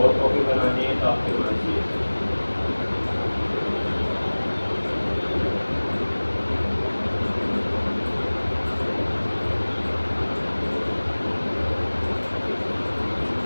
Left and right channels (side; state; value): both; inverted; correlation -1.00